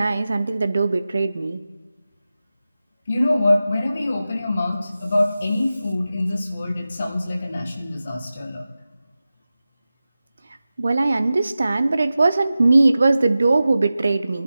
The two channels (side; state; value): both; inverted; correlation -0.95